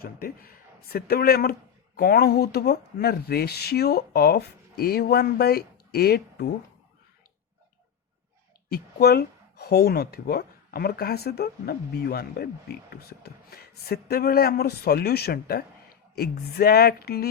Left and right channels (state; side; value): quieter; right; 8.0 dB